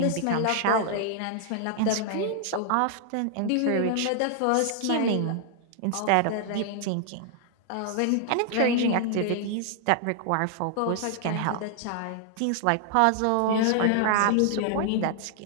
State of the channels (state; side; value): different; both; correlation 0.00